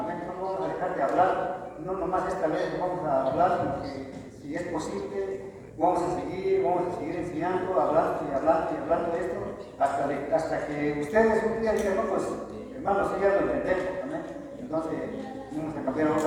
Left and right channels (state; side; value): identical; both; correlation 1.00